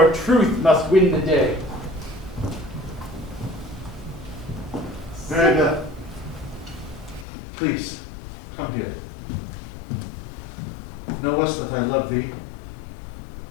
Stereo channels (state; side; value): drops out; right; at 7.2 s